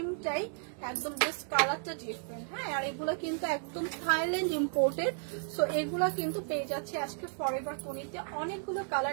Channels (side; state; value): left; silent; 55 dB below the other